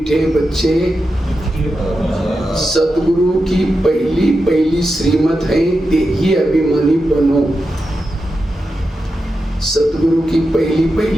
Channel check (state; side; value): normal; both; correlation 0.89